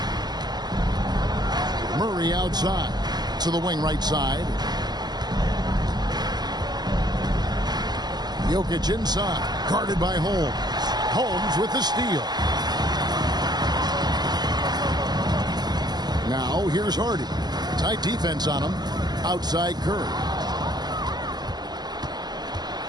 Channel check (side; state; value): left; late; 0.20 ms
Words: Murray outside to the wing right side. Jokic inside, guarded by Holmes. Holmes with the steal. Now here's Hardy. Tight defense on him. Outside Curry.